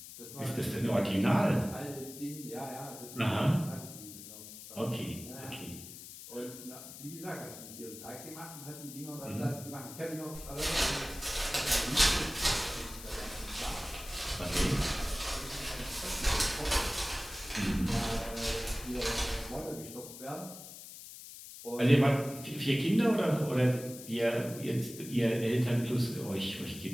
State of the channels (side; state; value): left; noise; hiss, 13 dB below the sound